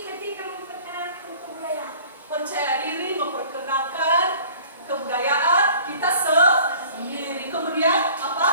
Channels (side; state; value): both; inverted; correlation -0.48